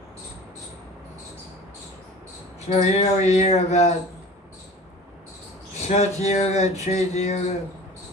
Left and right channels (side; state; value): both; normal; correlation 0.41